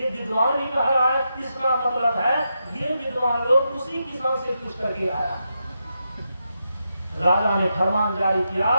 विद्वान भी कह रहा है, इसका मतलब है ये विद्वान लोग उसी किसान से पूछ करके आया। राजा ने फरमान जारी किया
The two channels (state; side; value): inverted; both; correlation -0.85